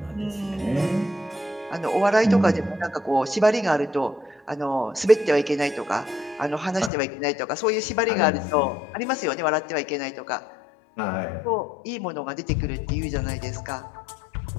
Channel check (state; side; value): drops out; right; at 6.9 s